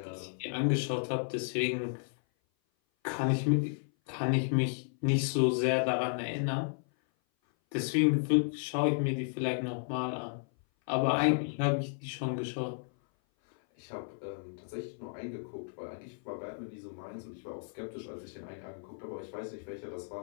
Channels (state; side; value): silent; right; 56 dB below the other